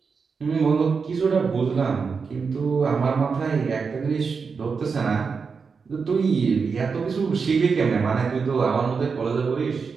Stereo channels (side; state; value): left; quieter; 5.3 dB